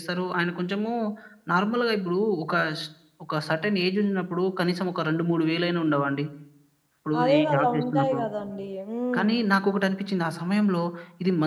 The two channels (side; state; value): both; identical; correlation 1.00